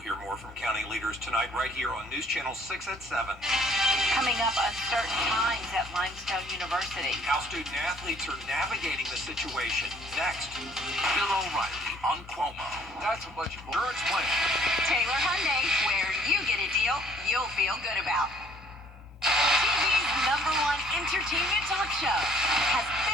hear more from county leaders tonight right here on News Channel 6 at 7. Coming up, uncertain times at Limestone University. How student athletes are navigating the situation. Next. Bill O'Reilly on Cuomo. That's a bunch of insurance plan. Taylor Hyundai, where you get a deal you'll feel good about. TV's #1 entertainment talk show has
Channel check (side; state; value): both; normal; correlation 0.59